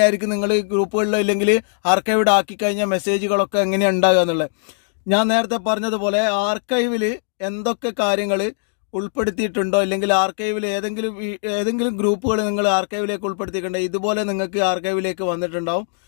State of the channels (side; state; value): right; silent; digital silence